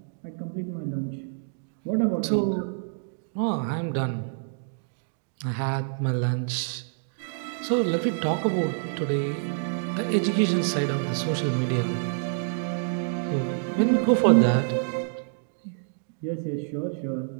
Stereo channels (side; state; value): left; silent; digital silence